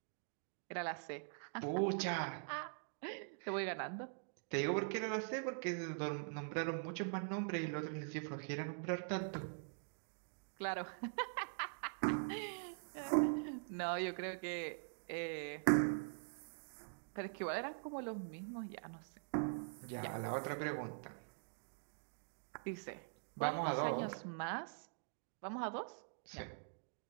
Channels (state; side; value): silent; left; digital silence